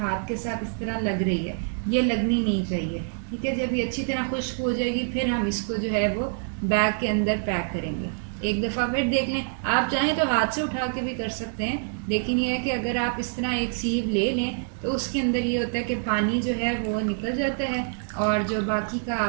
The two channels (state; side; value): silent; left; digital silence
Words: के साथ इस तरह लग रही है, ये लगनी नहीं चाहिए। ठीक है, जब ये अच्छी तरह खुश्क हो जाएगी फिर हम इसको जो है वो बैग के अंदर पैक करेंगे। एक दफ़ा फिर देख लें, आप चाहें तो हाथ से उठा के भी कर सकते हैं, लेकिन ये है कि अगर आप इस तरह एक सीव ले लें तो उसके अंदर ये होता है कि पानी जो है वो निकल जाता है, और जो बाकी का